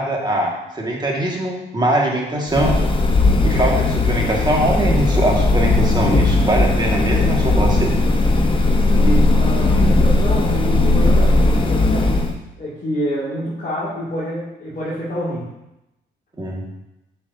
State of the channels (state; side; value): normal; both; correlation 0.74